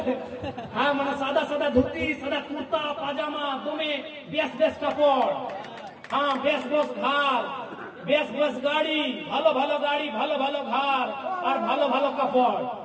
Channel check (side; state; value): both; identical; correlation 1.00